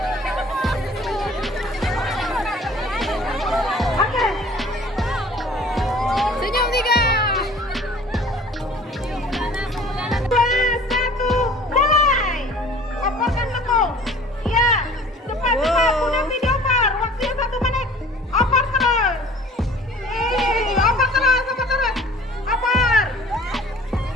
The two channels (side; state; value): both; normal; correlation 0.49